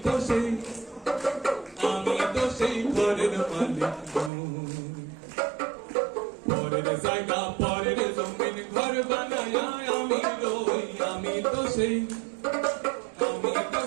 তো সেই ঘরের মালিক। পরের জায়গা পরের জমিন ঘর বানায় আমি রই, আমি তো সেই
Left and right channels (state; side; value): drops out; left; at 4.3 s